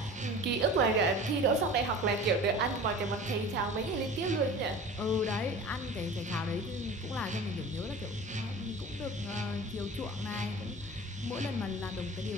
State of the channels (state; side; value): normal; both; correlation 0.39